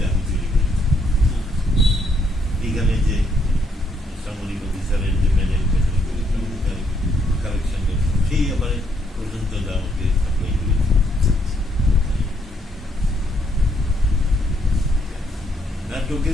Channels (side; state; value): both; normal; correlation 0.72